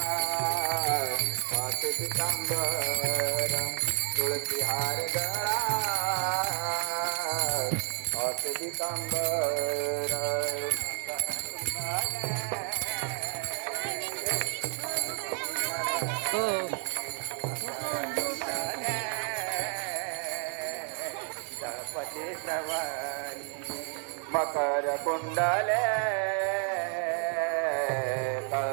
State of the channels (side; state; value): left; quieter; 39.7 dB